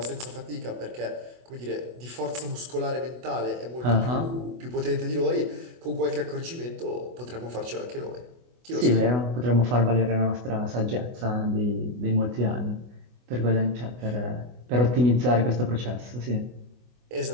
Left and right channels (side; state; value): left; late; 24 ms